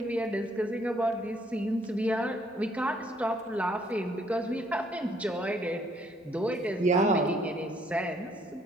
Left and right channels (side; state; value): both; normal; correlation 0.66